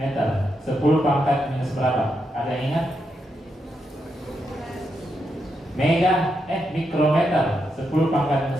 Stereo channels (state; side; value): normal; both; correlation 0.83